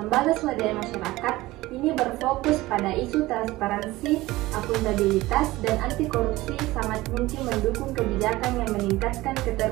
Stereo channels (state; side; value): quieter; left; 18.6 dB